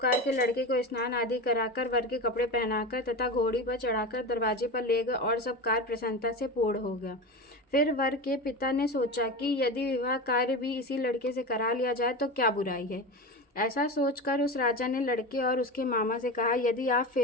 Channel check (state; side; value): normal; both; correlation 0.24